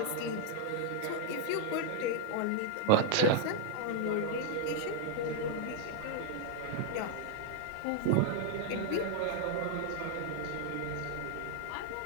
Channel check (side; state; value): both; different; correlation 0.00